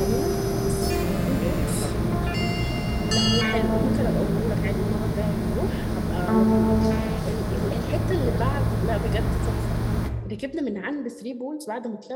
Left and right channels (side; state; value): both; identical; correlation 1.00